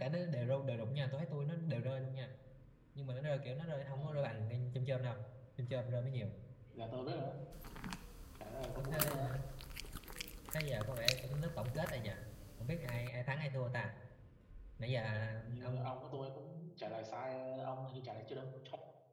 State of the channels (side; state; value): both; identical; correlation 1.00